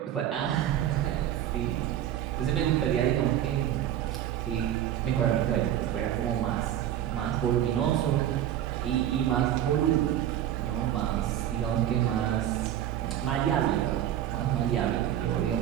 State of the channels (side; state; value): left; quieter; 11.4 dB